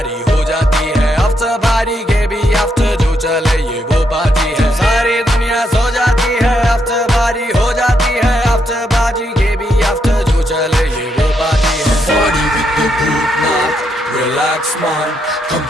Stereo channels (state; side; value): normal; both; correlation 0.78